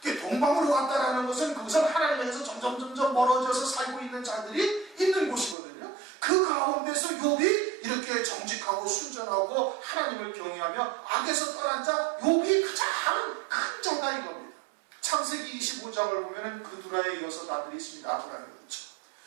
동방으로 갔다라는 것은 그것은 하나님에서 점점 멀어져서 살고 있는 자들이 있는 곳이거든요. 그 가운데서 욥이 이렇게 정직하고 순전하고 하나님을 경외하며 악에서 떠난 자 욥이 가장 큰 자다 이겁니다. 창세기 25장을 보면은 그두라의 6 아들이 있습니다. 아브라함이 그렇죠.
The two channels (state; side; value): drops out; left; at 5.6 s